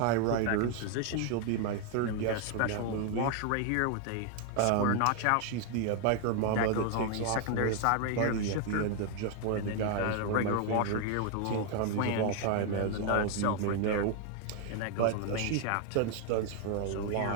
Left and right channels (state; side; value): different; both; correlation 0.01